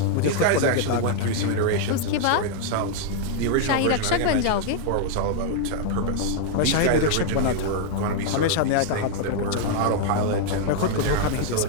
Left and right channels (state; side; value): different; both; correlation -0.01